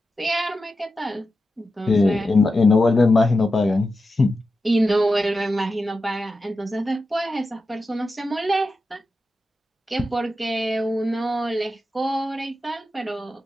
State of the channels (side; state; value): both; normal; correlation 0.90